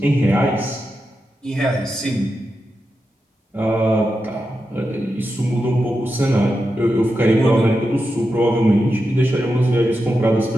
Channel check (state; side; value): normal; both; correlation 0.89